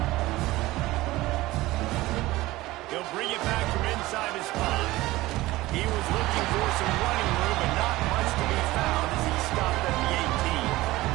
He'll bring it back from inside his spot. He was looking for some running room, but not much to be found as he stopped at the 18.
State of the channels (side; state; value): left; quieter; 18.4 dB